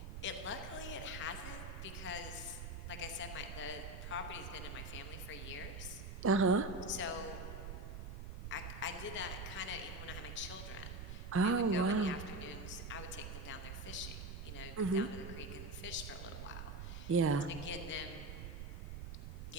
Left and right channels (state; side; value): noise; right; rumble, 7 dB below the sound